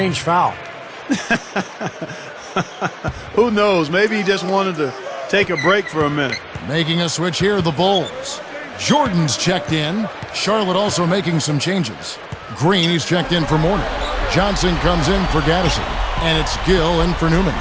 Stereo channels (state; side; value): identical; both; correlation 1.00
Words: foul. Who knows? Maybe he just wanted to take a break for a minute. Making a switch here, the Bulls. Jordan's checked in. Charlotte also making some changes. Green, he's checked in for Mourning. Johnson comes in for Gaddison. And it's Gill in for Newman.